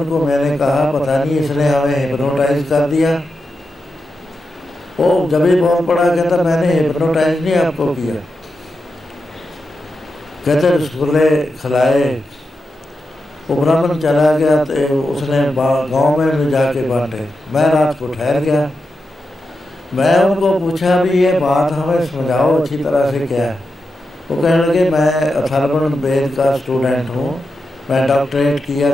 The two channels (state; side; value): normal; both; correlation 0.89